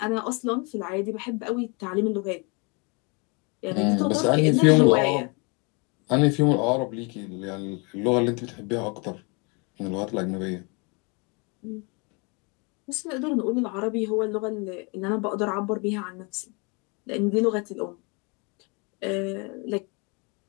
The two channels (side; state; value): right; quieter; 31.6 dB